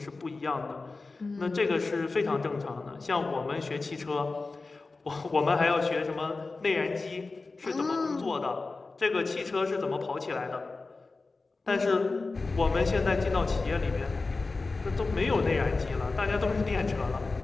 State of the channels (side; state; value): right; quieter; 3.7 dB